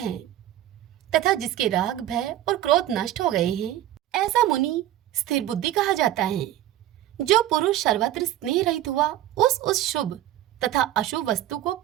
तथा जिसके राग, भय और क्रोध नष्ट हो गए हैं, ऐसा मुनि स्थिर बुद्धि कहा जाता है। जो पुरुष सर्वत्र स्नेह रहित हुआ उस शुभ तथा अशुभ वस्तु को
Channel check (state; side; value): quieter; left; 13.3 dB